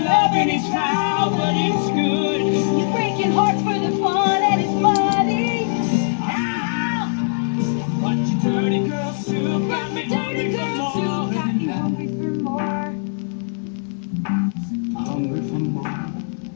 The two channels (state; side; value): silent; right; digital silence